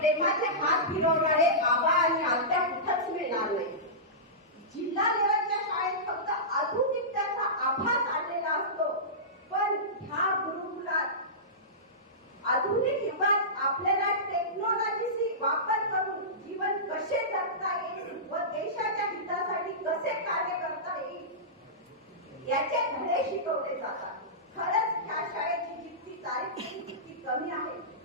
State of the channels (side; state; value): both; normal; correlation -0.18